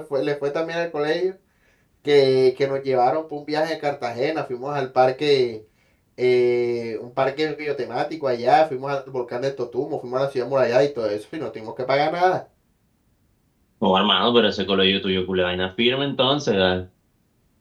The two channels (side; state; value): both; identical; correlation 1.00